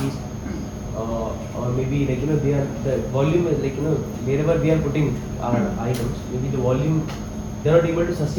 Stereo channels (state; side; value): identical; both; correlation 1.00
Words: or maybe the volume is wherever we are putting our items, maybe the volume, they are not able to